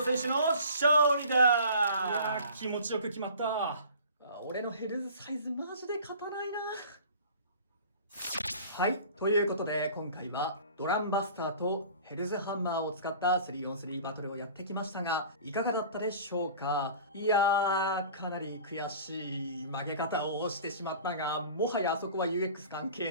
選手の勝利いやだ。ー、気持ちよく決まった。俺のヘルズサイズマジで勝たないな。はい、ということで今回はドランバスターとヘルズハンマーを使った 3on3 バトルをやってきましたが、いかがだったでしょうか。いやー、かなり悔しい負け方をしてしまったが、もはやあそこは UX 関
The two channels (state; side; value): inverted; both; correlation -0.43